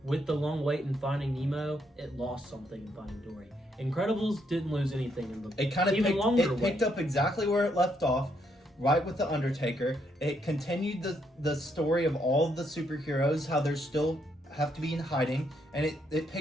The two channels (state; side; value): normal; both; correlation 0.75